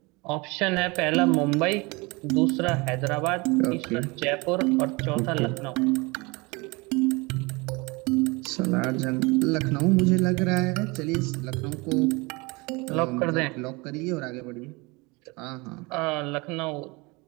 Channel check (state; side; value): quieter; left; 25.9 dB